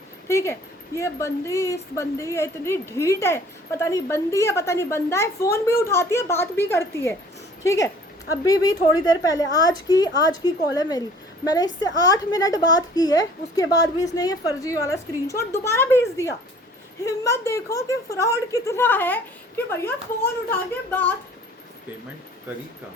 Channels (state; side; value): normal; both; correlation 0.52